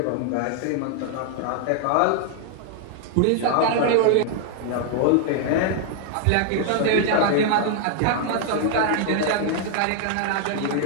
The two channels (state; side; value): different; both; correlation 0.00